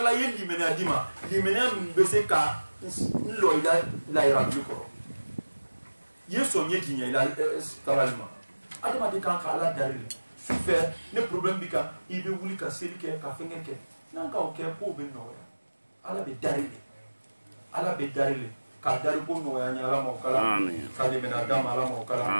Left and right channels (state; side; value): inverted; both; correlation -1.00